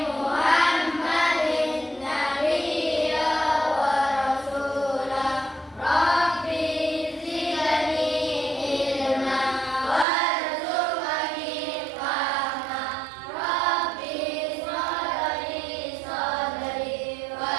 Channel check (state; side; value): drops out; left; at 10.1 s